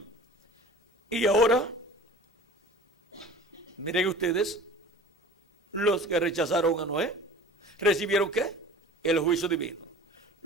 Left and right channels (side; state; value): both; normal; correlation 0.41